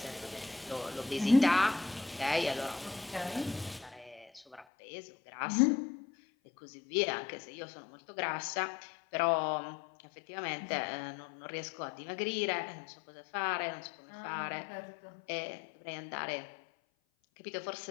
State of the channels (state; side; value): drops out; right; at 4.7 s